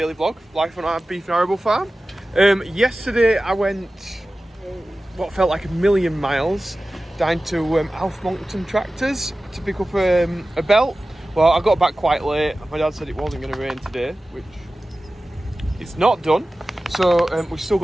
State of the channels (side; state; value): both; normal; correlation 0.96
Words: vlog, life on our beef and arable farm. Yesterday I went what felt like a million miles down to Alf Monkton Tractors to pick up a belt. Well, I got back quite late. My dad said it wasn't going to rain today, which it's not done. So we've still